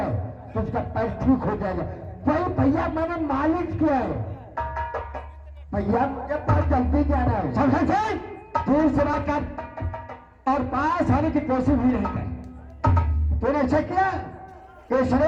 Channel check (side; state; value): both; identical; correlation 1.00